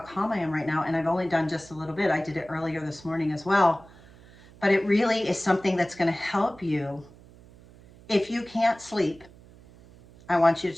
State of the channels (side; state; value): right; noise; hum, 23 dB below the sound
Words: I am right now. And I've only done just a little bit. I did it earlier this morning as well. But it really is something that's going to help you. If you can't sleep, I want you to